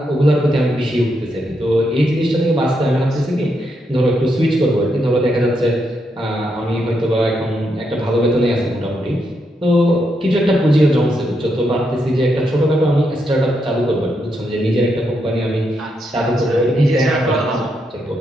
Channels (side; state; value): both; normal; correlation 0.81